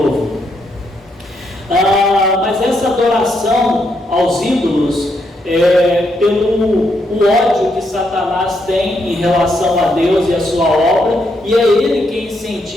Mas essa adoração aos ídolos, pelo o ódio que Satanás tem em relação a Deus e a sua obra, e é ele quem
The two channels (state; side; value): normal; both; correlation 0.78